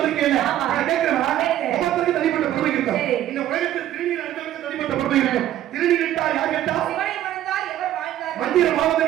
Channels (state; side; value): quieter; left; 12.6 dB